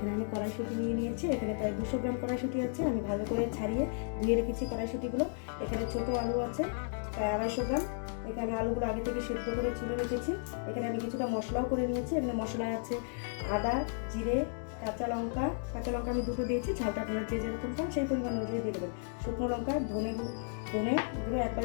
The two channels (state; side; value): silent; right; digital silence